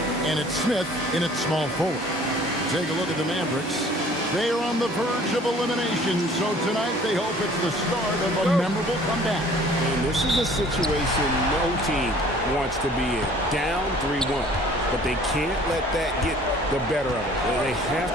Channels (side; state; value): both; normal; correlation 0.52